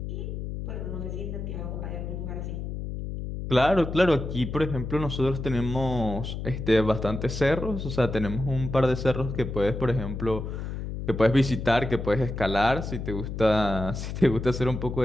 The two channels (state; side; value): noise; left; hum, 6 dB below the sound